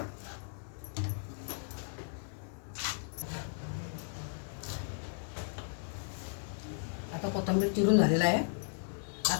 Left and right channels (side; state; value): right; silent; digital silence